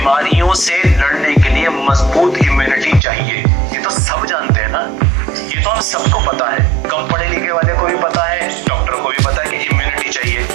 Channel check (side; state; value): left; drops out; at 3.0 s